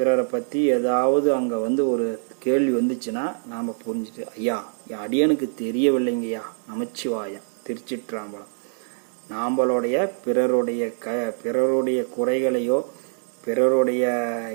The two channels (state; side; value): silent; left; 63 dB below the other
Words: பற்றி ஏதாவது அங்கே ஒரு கேள்வி வந்துச்சுன்னா நாம் புரிஞ்சுட்டு, ஐயா என் அடியனுக்கு தெரியவில்லைங்கய்யா, நமச்சிவாயம், திருச்சிற்றம்பலம். நாம்பளுடைய பிறருடைய குறைகளையோ பிறருடைய